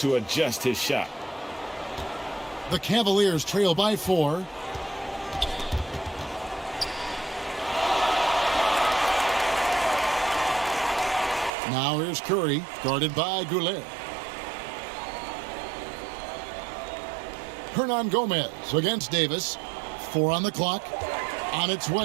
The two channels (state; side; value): drops out; left; at 11.5 s